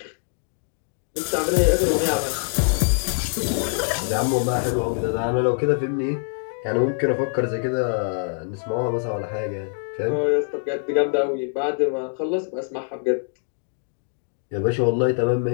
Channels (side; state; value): right; silent; digital silence